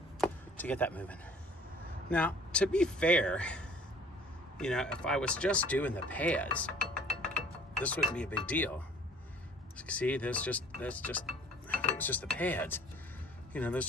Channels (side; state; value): both; normal; correlation 0.52